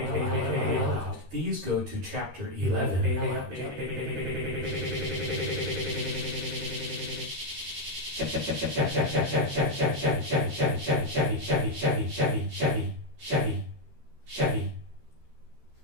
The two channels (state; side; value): late; left; 13 ms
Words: these go to chapter 11 Chevy